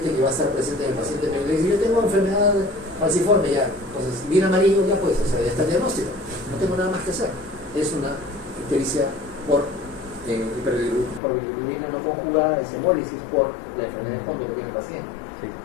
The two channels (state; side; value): drops out; right; at 11.2 s